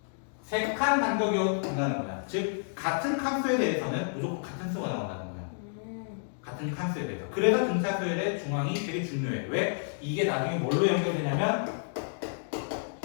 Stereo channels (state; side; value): silent; right; digital silence